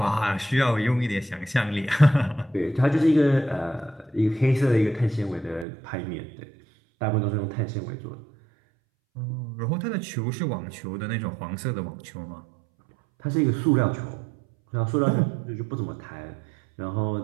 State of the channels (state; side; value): drops out; left; at 5.7 s